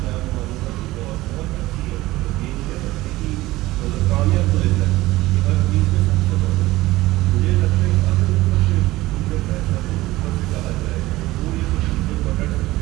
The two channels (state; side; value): quieter; left; 18.0 dB